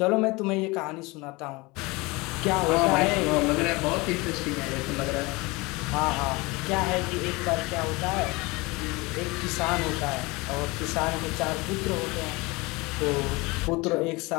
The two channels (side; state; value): right; quieter; 24.2 dB